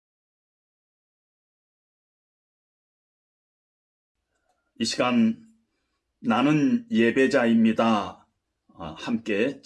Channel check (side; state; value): both; identical; correlation 1.00